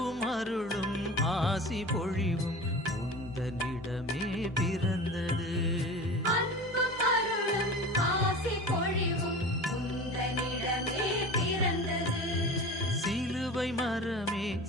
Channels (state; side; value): normal; both; correlation 0.34